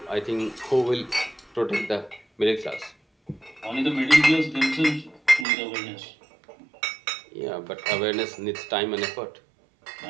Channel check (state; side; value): drops out; left; at 5.5 s